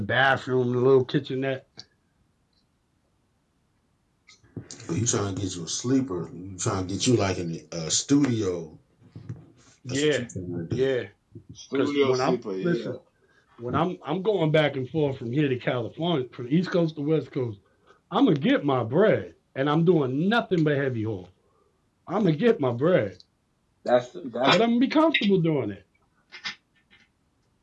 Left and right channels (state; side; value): identical; both; correlation 1.00